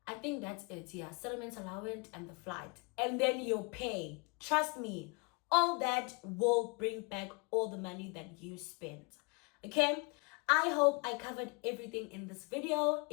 I think that's it. Yeah, settlement allowance and the flight. And then your pay. Trust me, all that will bring back all the money that you spent. Okay? I hope I covered everything in this video.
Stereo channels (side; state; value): right; quieter; 30.1 dB